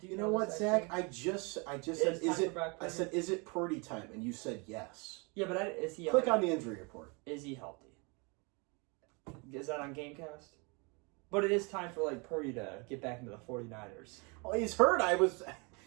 You know what, this Zach? actually? I just said, It's is time it? for Brock I Purdy. said, is it Purdy time? And you said yes. Yeah, but is he? Click on the injury report. Is he healthy? Is that on Gamecast? But it is time for like Purdy to get back into the 49ers. Oh, he's hurt. I was.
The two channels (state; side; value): quieter; left; 31.0 dB